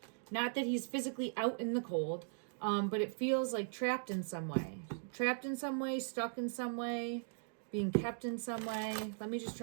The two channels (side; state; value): left; silent; digital silence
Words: Not that he's physically out in the cold, but it feels like trapped in some way. Trapped in some way, stuck in some way, being kept in some way. Let me just